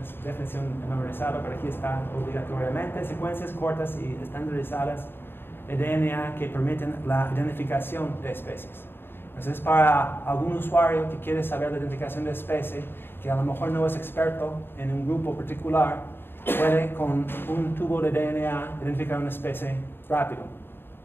memorizada, pero aquí está obligatoriamente: secuencias cortas y estandarizadas de DNA que permiten la identificación de especies. Entonces, para algún usuario que quiere saber la identificación de especie, que a lo mejor no es experto en un grupo particular, puede con un tubo de DNA identificar una especie rápido,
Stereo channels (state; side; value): late; right; 0.10 ms